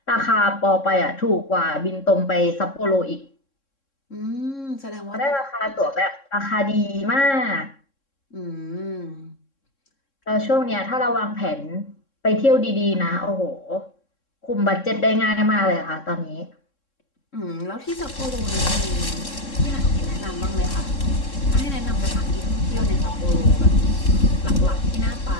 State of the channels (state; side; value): late; right; 3.7 ms